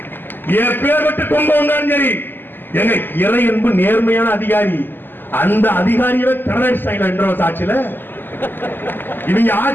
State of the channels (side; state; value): right; late; 0.093 ms